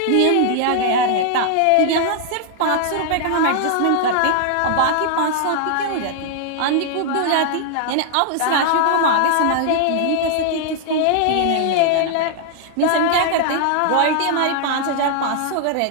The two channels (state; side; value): different; both; correlation -0.01